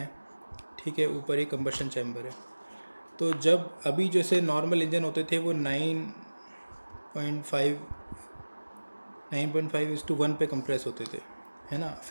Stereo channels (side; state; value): both; inverted; correlation -1.00